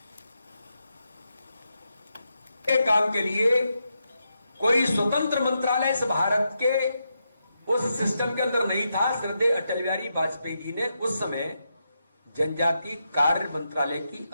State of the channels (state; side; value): inverted; both; correlation -0.84